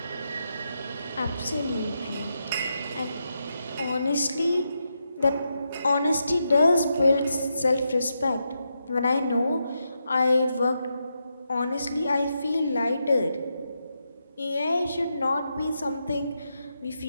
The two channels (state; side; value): inverted; both; correlation -0.85